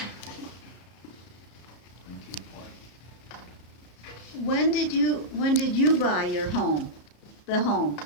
When did you buy your home? The home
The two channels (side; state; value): right; late; 34 ms